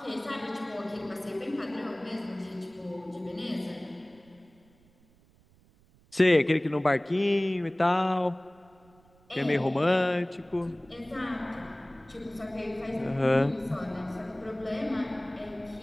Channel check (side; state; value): right; noise; rumble, 30 dB below the sound